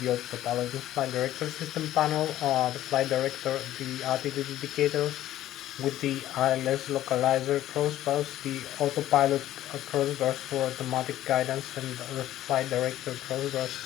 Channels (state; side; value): quieter; right; 13.4 dB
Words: the autopilot and flight director system panel, the flight director, the altitude indicator, with the ILS localizer crossbars, the autopilot crossbars for automatic guidance, and the flight director crossbars